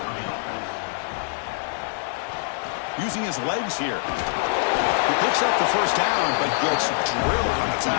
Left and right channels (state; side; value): silent; right; 59 dB below the other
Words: Using his legs here. He picks up the first down, but gets drilled on the